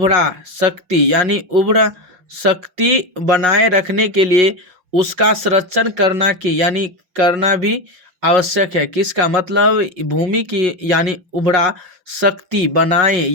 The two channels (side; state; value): left; late; 5.8 ms